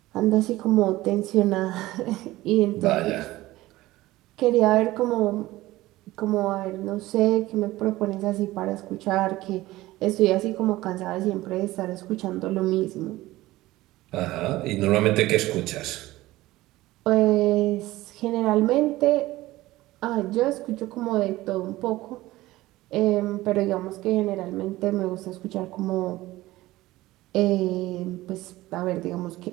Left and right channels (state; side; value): quieter; left; 17.6 dB